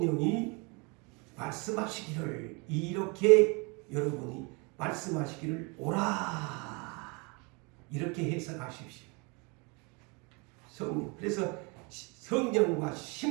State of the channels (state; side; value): quieter; left; 30.5 dB